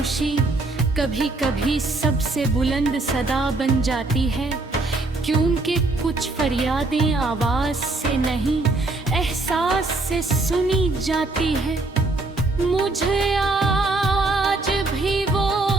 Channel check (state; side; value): quieter; left; 3.1 dB